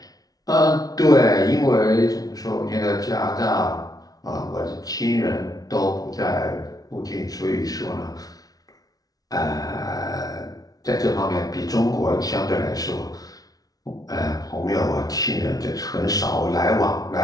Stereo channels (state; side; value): late; right; 0.18 ms